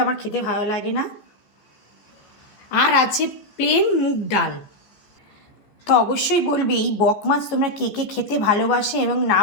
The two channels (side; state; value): right; late; 14 ms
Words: আমার খেতে ভালো লাগে না। আর আছে প্লেন মুগ ডাল। তো অবশ্যই বলবে এই বক মাছ তোমরা কে কে খেতে ভালোবাসে এবং